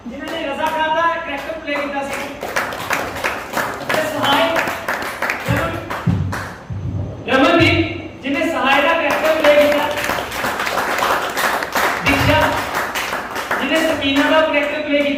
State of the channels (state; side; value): identical; both; correlation 1.00